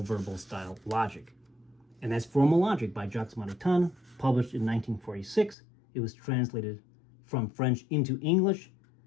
verbal style logic. And that's Formal Logic by Jacques Maritain, published in 1946. It was translated from French into English.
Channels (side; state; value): right; drops out; at 5.6 s